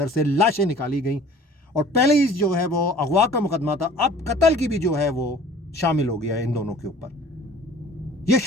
से लाशें निकाली गई और पहले ही जो है वो अगवा का मुकदमा था, अब कत्ल की भी जो है वो शामिल हो गया है इन दोनों के ऊपर। ये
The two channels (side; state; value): both; normal; correlation 0.49